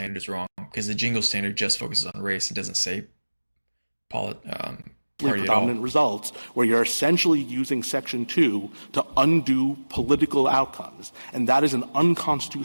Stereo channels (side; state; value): both; inverted; correlation -1.00